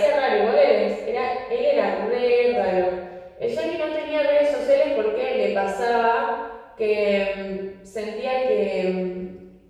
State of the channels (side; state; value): both; identical; correlation 1.00